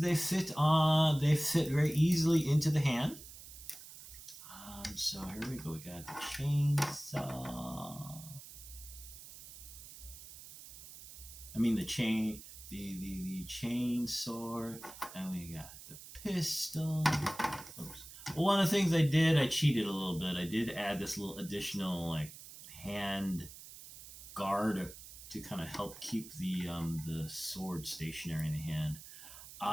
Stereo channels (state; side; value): noise; right; hiss, 15 dB below the sound